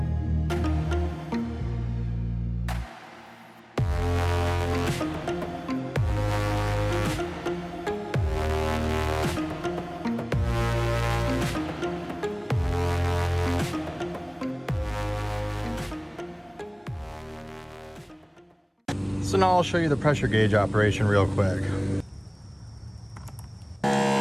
So now I'll show you the pressure gauge operation real quick.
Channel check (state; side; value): identical; both; correlation 1.00